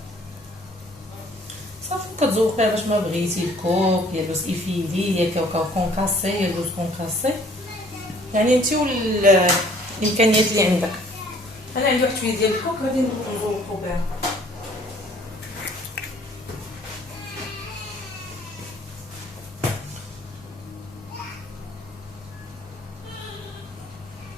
صافي كتذوقيها باش ما بغيتي، الكوك يا لوز ايفيلي يا كاوكاو كونكاسي يا لوز كونكاسي، يعني انت والامكانيات اللي عندك. انا عندي واحد شويه ديال الكوك غادي نذوقو بها.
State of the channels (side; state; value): both; normal; correlation 0.57